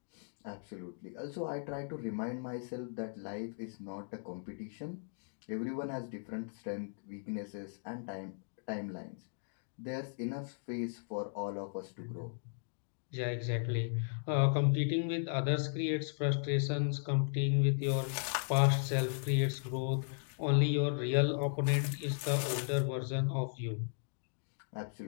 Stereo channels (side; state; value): right; silent; digital silence